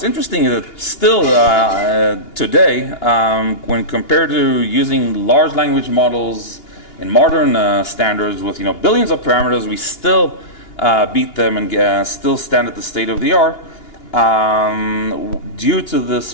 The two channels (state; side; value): late; right; 2.8 ms